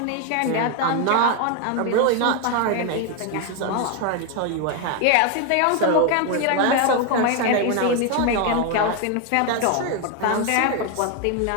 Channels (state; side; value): different; both; correlation 0.01